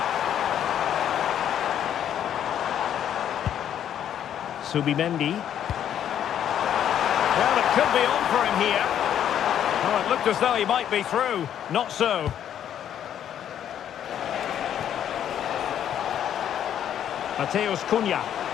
Subimendi. Well, it could be on for him here. Oh, it looked as though he might be through. Not so. Mateus Cunha.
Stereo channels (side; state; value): right; quieter; 10.0 dB